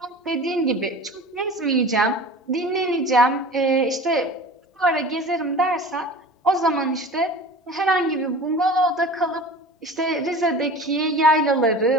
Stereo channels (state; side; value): normal; both; correlation 0.38